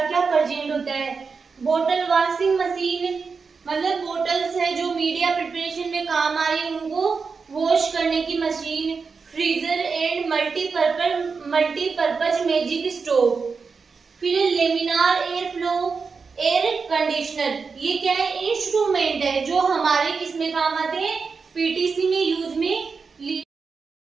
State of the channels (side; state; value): left; quieter; 5.1 dB